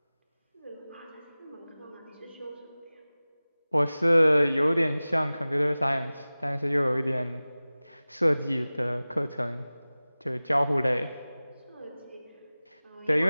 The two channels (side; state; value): both; inverted; correlation -0.98